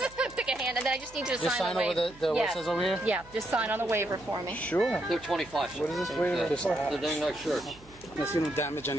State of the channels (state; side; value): noise; right; hum, 23 dB below the sound